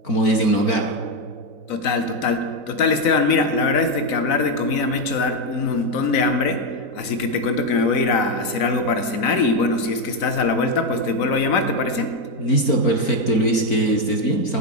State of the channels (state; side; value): late; right; 4.0 ms